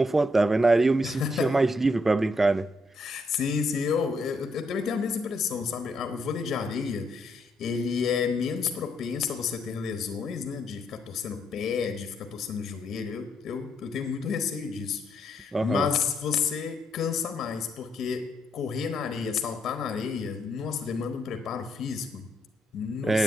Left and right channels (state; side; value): normal; both; correlation 0.76